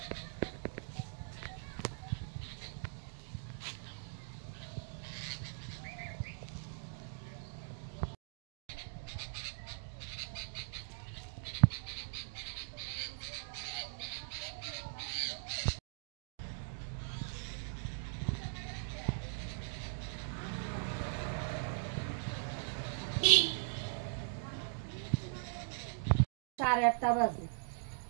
সাড়ে 8টা বাজে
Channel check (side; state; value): left; silent; digital silence